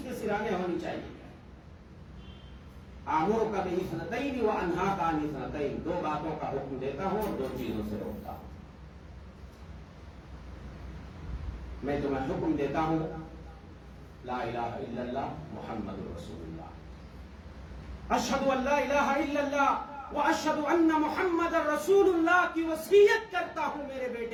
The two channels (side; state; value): both; identical; correlation 1.00